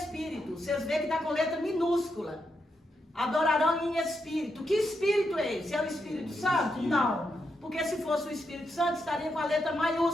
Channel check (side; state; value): both; normal; correlation 0.83